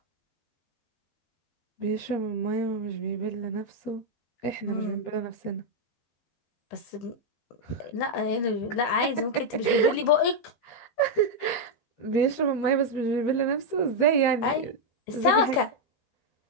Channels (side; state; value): right; late; 17 ms